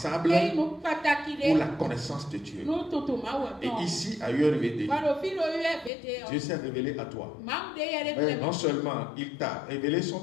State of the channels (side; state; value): right; drops out; at 5.9 s